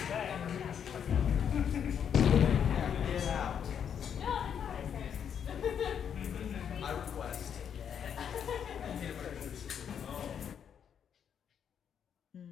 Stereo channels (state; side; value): quieter; right; 8.2 dB